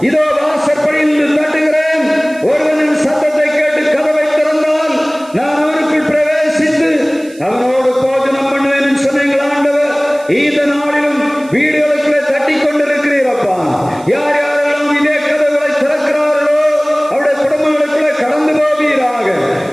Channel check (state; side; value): noise; right; hiss, 24 dB below the sound